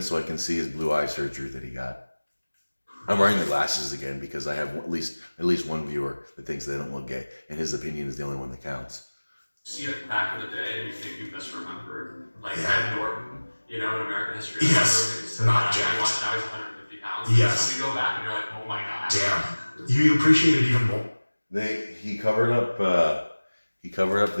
so I can see his blue eye surgery that he got. I'm wearing the glasses again because I have at least one viewer that thinks they don't look gay, and his opinion is the only one that counts. See it back in the day and you think you misremembered. Like Yeah. Ed Norton, you know, in American History. Yes, So not now jacked. now he's 150 pounds. Yes. So you go back and you're like, oh my god. Damn. You appreciate it even more. He covered up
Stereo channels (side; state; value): both; inverted; correlation -1.00